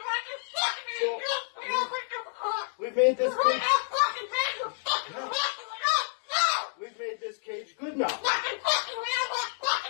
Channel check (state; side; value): silent; right; 58 dB below the other